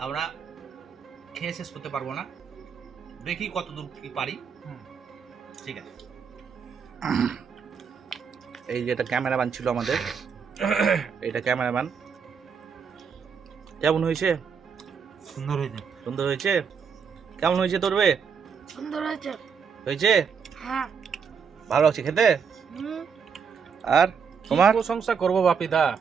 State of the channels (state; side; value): quieter; left; 6.4 dB